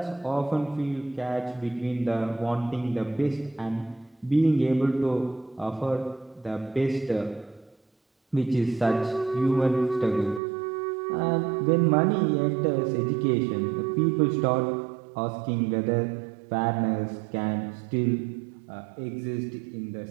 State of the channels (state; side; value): drops out; left; at 10.4 s